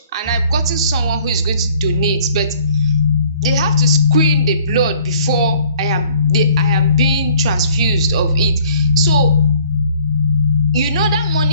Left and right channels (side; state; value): both; inverted; correlation -0.57